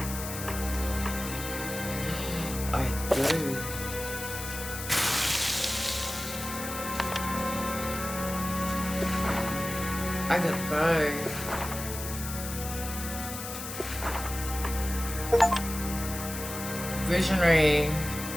I do. I got the bow. Visionary.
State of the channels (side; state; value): left; noise; hiss, 8 dB below the sound